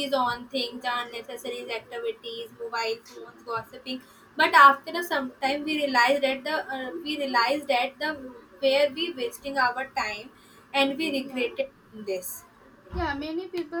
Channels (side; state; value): both; identical; correlation 1.00